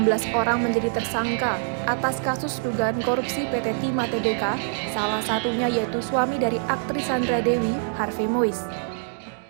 orang menjadi tersangka atas kasus dugaan korupsi PT Timah Tbk, salah satunya yaitu suami dari aktris Sandra Dewi, Harvey Moise.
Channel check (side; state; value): left; silent; digital silence